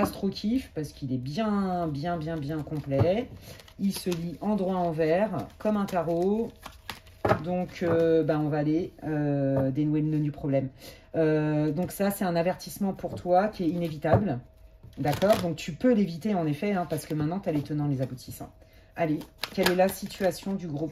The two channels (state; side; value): identical; both; correlation 1.00